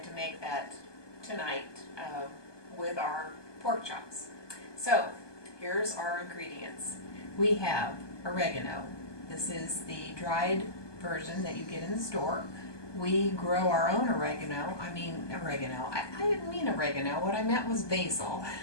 make that tonight with our pork chops. So, here's our ingredients. We have oregano. This is the dried version that you get in the store. We grow our own oregano. I didn't mean oregano. What I meant was basil.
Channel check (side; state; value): right; late; 1.2 ms